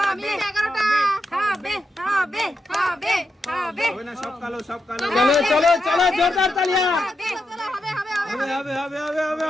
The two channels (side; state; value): both; normal; correlation 0.85